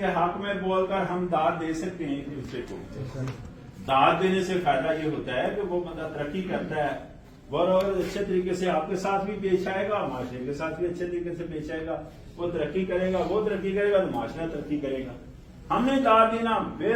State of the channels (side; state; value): both; identical; correlation 1.00